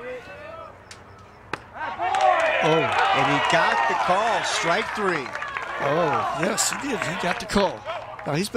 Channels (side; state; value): both; identical; correlation 1.00